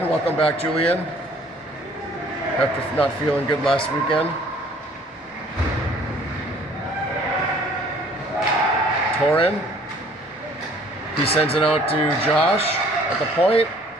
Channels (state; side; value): normal; both; correlation 0.56